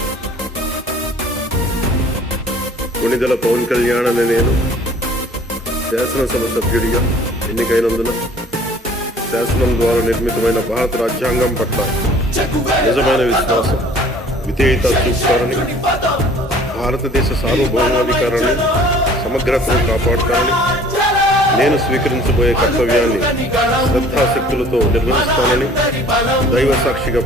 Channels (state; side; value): normal; both; correlation 0.51